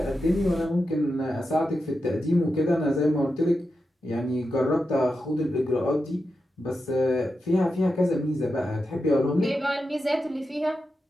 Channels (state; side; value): normal; both; correlation 0.89